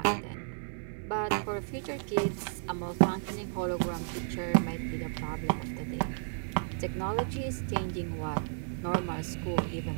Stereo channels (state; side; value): silent; left; digital silence